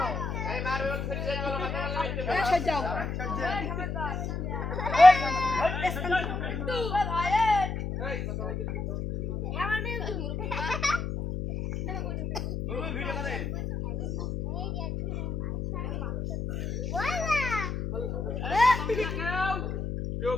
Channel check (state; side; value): noise; left; hum, 3 dB below the sound